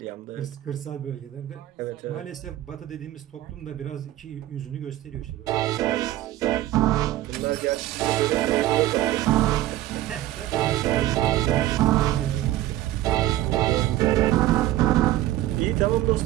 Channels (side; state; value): left; quieter; 14.5 dB